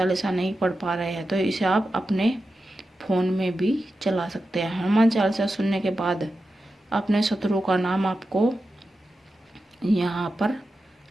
नहीं पढ़ पा रहे हैं तो इसे आप अपने फ़ोन में भी चला सकते हैं। हनुमान चालीसा सुनने के बाद अपने शत्रु का नाम आपको यहाँ पर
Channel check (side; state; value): both; normal; correlation 0.91